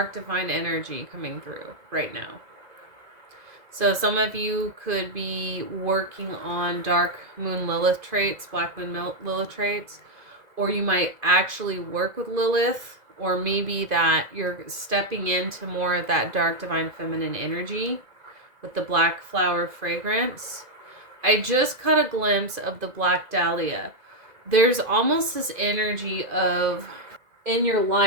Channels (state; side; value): late; left; 2.0 ms